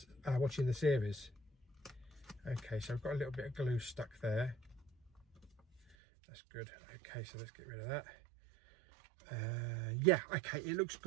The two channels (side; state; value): left; drops out; at 6.0 s